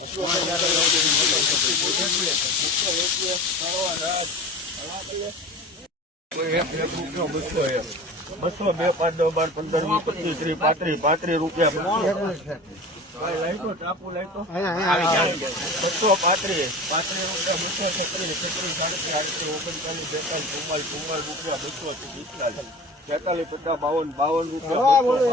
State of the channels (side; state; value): both; normal; correlation 0.35